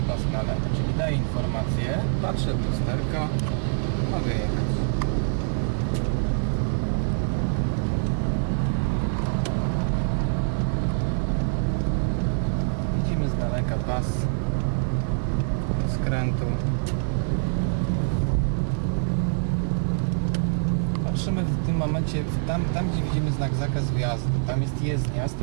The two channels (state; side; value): silent; left; digital silence